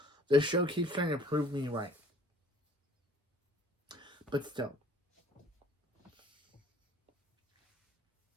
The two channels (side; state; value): both; normal; correlation 0.54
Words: The show keeps trying to prove me right. But still.